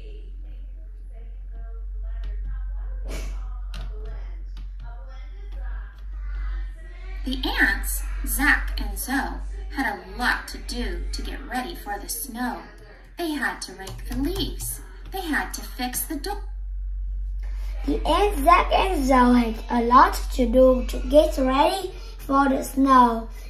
The ants, Zach and Zoe, had a lot to do to get ready for the snow. They had to rake the leaves. They had to fix the door. The ants, Zach and Zoe had a lot to do to get ready for the snow.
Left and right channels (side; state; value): both; identical; correlation 1.00